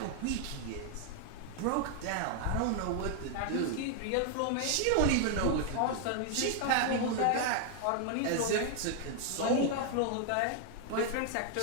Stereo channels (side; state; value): both; different; correlation 0.00